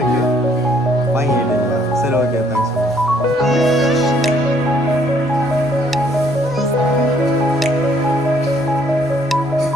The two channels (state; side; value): normal; both; correlation 0.64